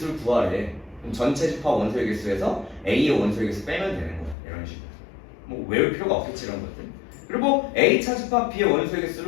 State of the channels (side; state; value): right; drops out; at 4.4 s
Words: 구하래. 그럼 전체 집합 원소의 개수에서 A의 원소의 개수 빼면 되는 거야. 이런 식으로. 뭐 외울 필요가 없겠지 이런 것들. 그리고 A 차집합 B의 원소의